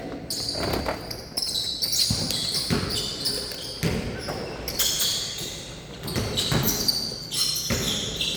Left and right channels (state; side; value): identical; both; correlation 1.00